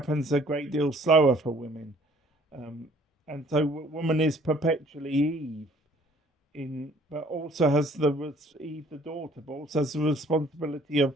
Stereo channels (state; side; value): normal; both; correlation 0.57